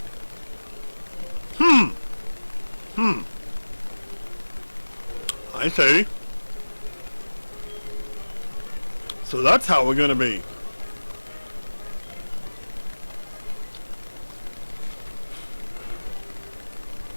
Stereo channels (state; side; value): inverted; both; correlation -1.00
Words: see. So that's how we're gonna be.